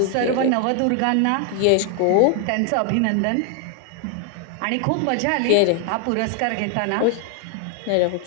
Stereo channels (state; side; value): different; both; correlation 0.00